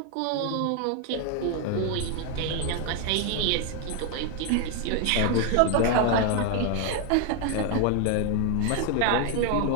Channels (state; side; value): different; both; correlation 0.01